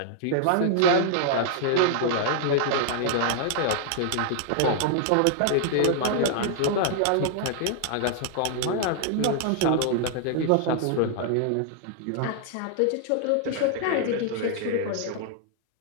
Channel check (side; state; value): both; different; correlation -0.01